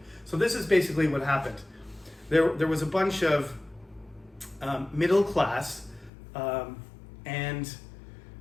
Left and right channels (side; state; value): right; drops out; at 6.1 s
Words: So this is basically what happened. There was a bunch of middle class and